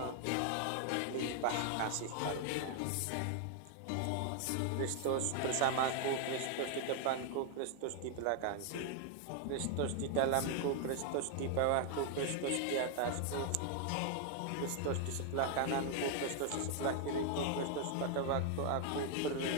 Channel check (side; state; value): both; different; correlation 0.00